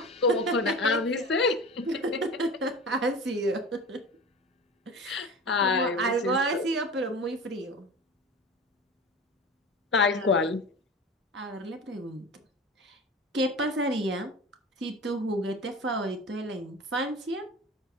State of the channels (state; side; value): normal; both; correlation 0.34